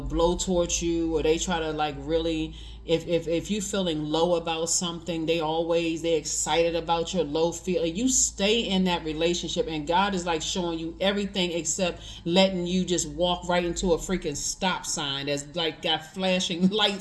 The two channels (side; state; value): both; identical; correlation 1.00